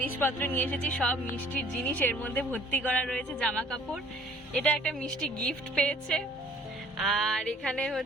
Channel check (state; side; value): normal; both; correlation 0.54